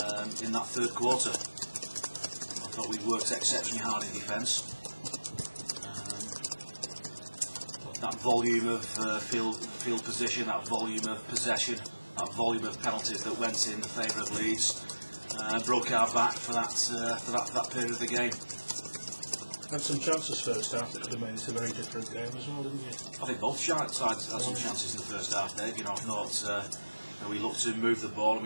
in that third quarter. I thought we worked exceptionally hard in defence. That volume of field position, that volume of possession, that volume of penalties that went in the favour of Leeds broke our back for that period of the game. Had some chances first half that could have made it a very different game as well, didn't you? I think both sides had some chances in the first half, Dave. You know, I thought we looked to move the ball and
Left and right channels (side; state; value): both; inverted; correlation -1.00